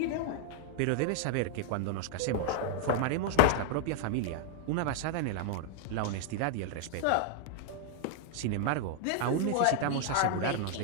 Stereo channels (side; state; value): both; different; correlation 0.00